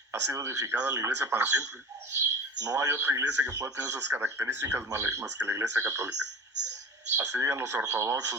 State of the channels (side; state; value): both; normal; correlation 0.37